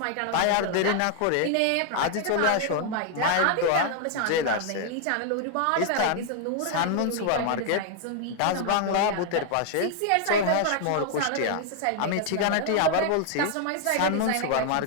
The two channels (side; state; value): both; different; correlation 0.00